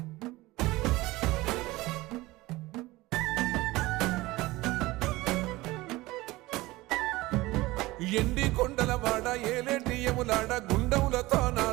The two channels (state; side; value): quieter; left; 19.7 dB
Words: ఎండి కొండల వాడ ఏలేటి యములాడ గుండములతో